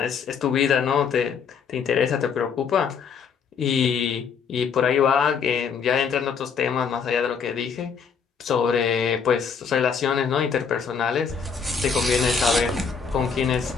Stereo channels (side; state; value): right; quieter; 6.3 dB